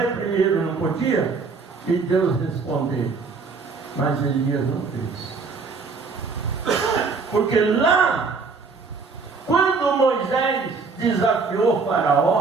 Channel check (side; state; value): left; quieter; 4.7 dB